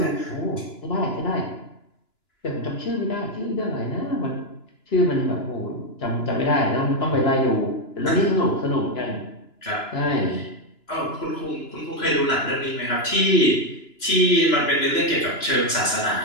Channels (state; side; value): late; right; 2.9 ms